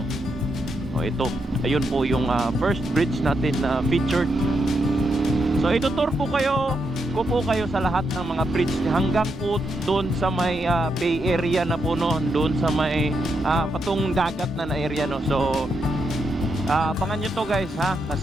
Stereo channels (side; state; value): both; normal; correlation 0.82